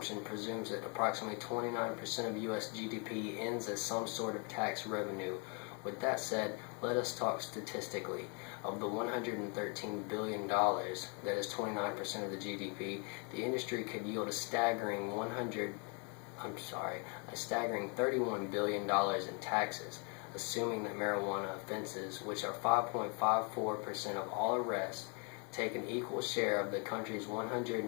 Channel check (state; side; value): quieter; right; 35.3 dB